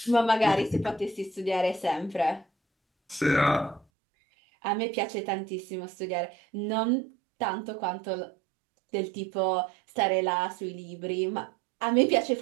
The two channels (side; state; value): left; drops out; at 3.9 s